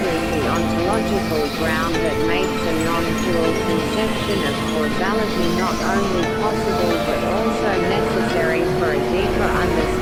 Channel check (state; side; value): identical; both; correlation 1.00